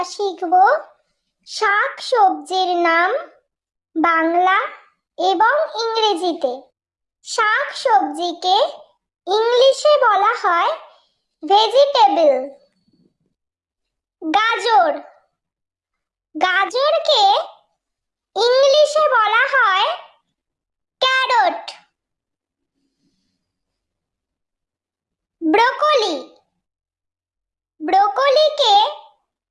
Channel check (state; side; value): identical; both; correlation 1.00